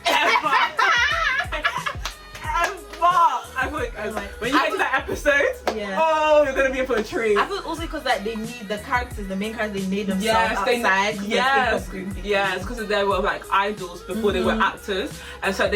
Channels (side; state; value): both; identical; correlation 1.00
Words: I feel like when you get to that episode, oh, you're gonna be in for a treat. I feel also because like they need the characters, the main characters, they made themselves outside. Yes, because they were like idols before they were actors, and so